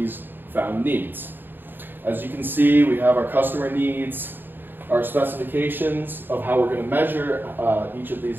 found needs. As you can see, we have our customer needs, our specifications of how we're going to measure each of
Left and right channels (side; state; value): left; late; 0.094 ms